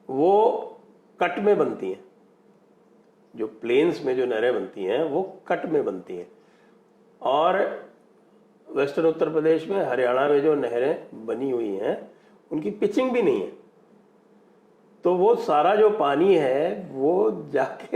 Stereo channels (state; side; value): identical; both; correlation 1.00